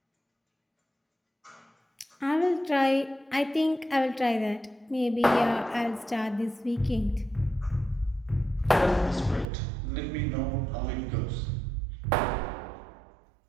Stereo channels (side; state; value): left; drops out; at 9.5 s